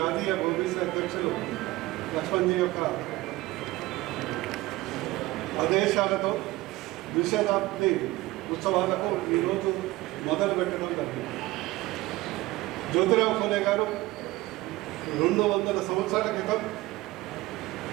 ఓబీసీ అధ్యక్షులు లక్ష్మణ్జీ యొక్క ఆదేశాలతో ద్విశతాబ్ది ఉత్సవాలకు ఈరోజు మొదలు పెట్టడం జరిగింది. జ్యోతిరావు పూలే గారు 200 సంవత్సరాల క్రితం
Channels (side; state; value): left; quieter; 19.1 dB